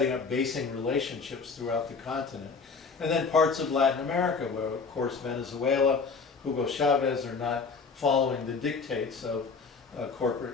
up basing relationships throughout the continent. And then parts of Latin America, where of course Venezuela, Hugo Chavez are not following the dictates of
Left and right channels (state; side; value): quieter; right; 4.9 dB